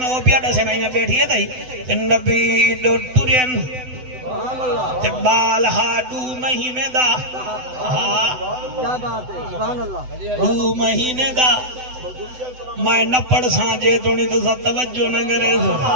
وہ پیاڈا سے میں بیٹھی ہے دائی نبی دو ٹورین تے بال ہا 2 مہینے دا کیا بات ہے سبحان اللہ 2 مہینے دا میں نہ پڑھ سانجے تو نہیں تو سب توجہ نہ کرے سو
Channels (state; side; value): late; left; 7.9 ms